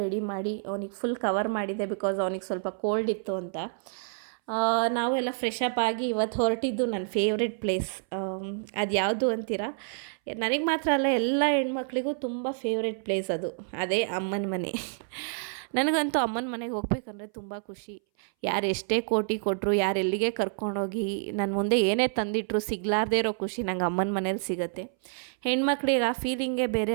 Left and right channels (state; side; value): silent; left; 59 dB below the other